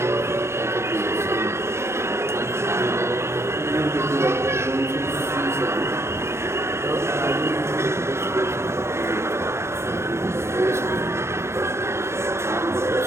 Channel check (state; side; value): late; left; 0.13 ms